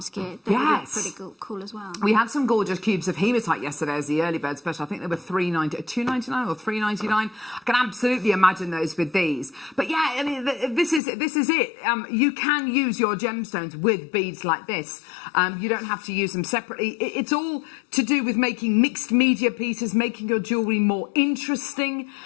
get, they would look pretty cool as well. We had some gorgeous cubes of hematite yesterday as the early bird special. I think they were $2.99 or $3.99. I can absolutely imagine those with these. But yeah, I mean, this is it. You can use your gemstones with beads like this. You don't have to use them separately. It's all to do with making mixed media pieces, making your jewellery more interesting,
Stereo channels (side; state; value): right; drops out; at 11.0 s